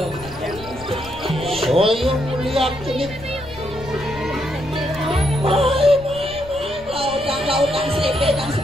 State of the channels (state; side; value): noise; left; rumble, 18 dB below the sound